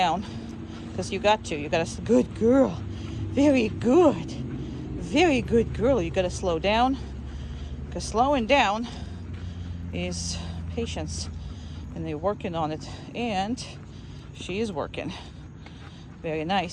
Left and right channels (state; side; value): identical; both; correlation 1.00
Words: because you got to. Good girl. Very good. Very good girl. You got to slow down because slowing down is patience, and they're working on it, and she is working. Very